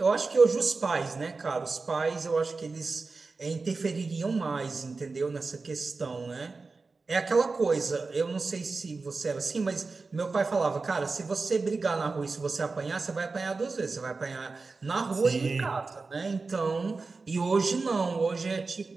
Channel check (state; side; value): quieter; left; 4.0 dB